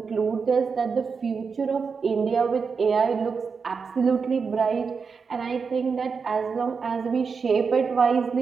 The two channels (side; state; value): left; quieter; 5.4 dB